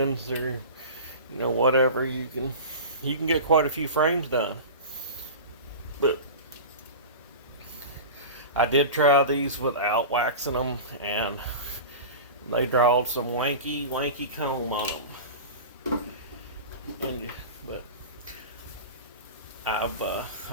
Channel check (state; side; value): inverted; both; correlation -0.32